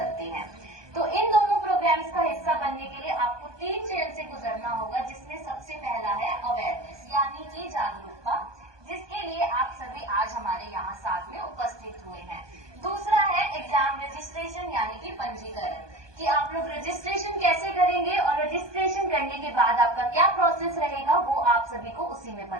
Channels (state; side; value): late; left; 1.2 ms